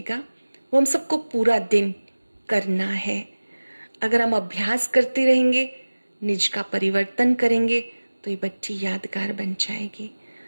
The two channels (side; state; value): both; inverted; correlation -1.00